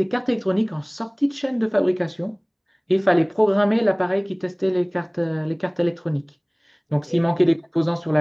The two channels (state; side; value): identical; both; correlation 1.00